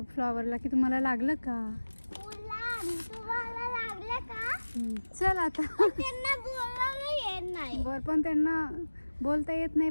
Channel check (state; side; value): inverted; both; correlation -1.00